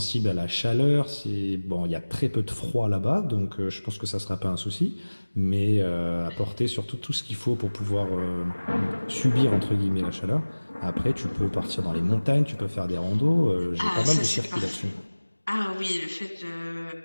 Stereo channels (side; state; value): both; inverted; correlation -1.00